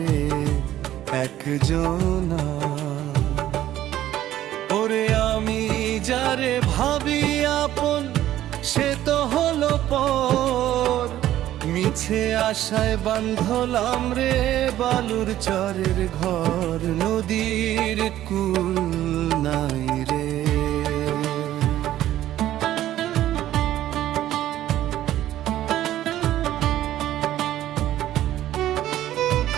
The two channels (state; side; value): quieter; left; 13.2 dB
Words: একজনা। ওরে আমি যারে ভাবি আপন, সে তো হলো পর। মিছে আশায় বাঁধলাম রে বালুর চরের ঘর। নদীর কুল নাই রে।